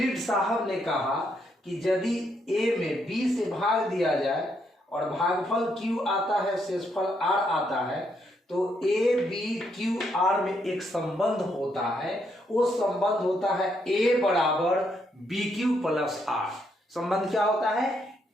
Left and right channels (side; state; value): both; normal; correlation 0.76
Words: साहब ने कहा कि यदि a में b से भाग दिया जाए और भागफल q आता है, शेषफल r आता है, तो a b q r में एक संबंध होता है। वो संबंध होता है a बराबर बी क्यू प्लस आर। संबंध क्या होता है?